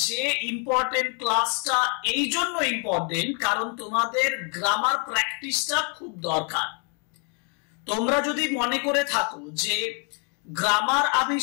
যে ইম্পর্টেন্ট ক্লাসটা এই জন্য ইম্পর্টেন্ট কারণ তোমাদের গ্রামার প্র্যাকটিসটা খুব দরকার। তোমরা যদি মনে করে থাকো যে গ্রামার আমি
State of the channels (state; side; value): quieter; right; 38.6 dB